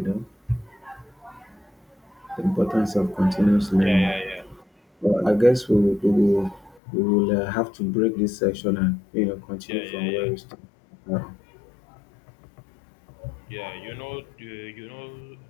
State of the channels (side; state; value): right; drops out; at 6.8 s